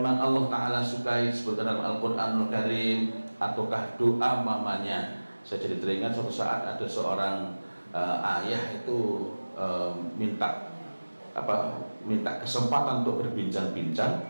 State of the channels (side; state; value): both; inverted; correlation -1.00